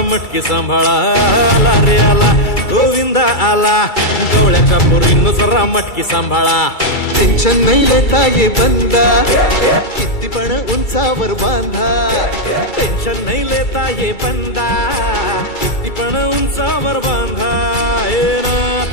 मटकी सांभाळा आला रे आला गोविंदा आला गवळ्याच्या बोरीनं जरा मटकी सांभाळा टेन्शन नाही लेता ये बंदा किती पण उंचावर बांधा टेन्शन नाही लेता ये बंदा किती पण उंचावर बांधा हे ना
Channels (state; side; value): late; right; 2.3 ms